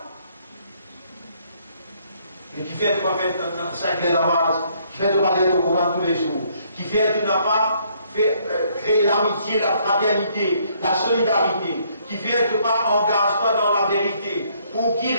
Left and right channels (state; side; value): inverted; both; correlation -0.67